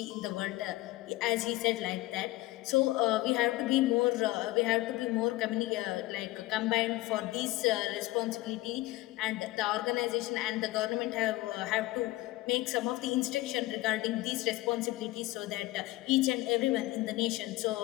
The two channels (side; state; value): right; quieter; 18.6 dB